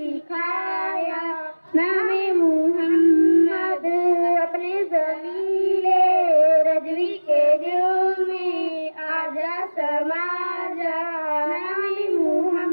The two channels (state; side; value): inverted; both; correlation -1.00